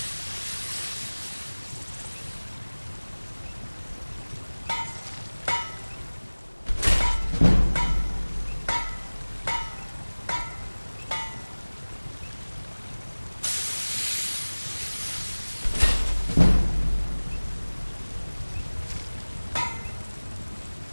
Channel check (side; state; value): both; inverted; correlation -1.00